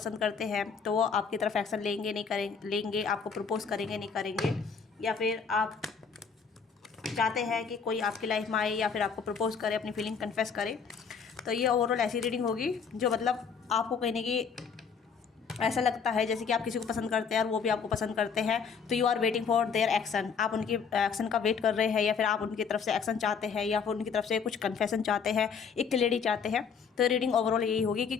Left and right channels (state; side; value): quieter; right; 6.0 dB